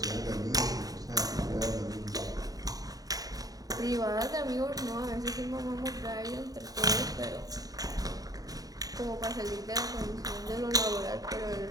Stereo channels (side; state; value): left; late; 0.18 ms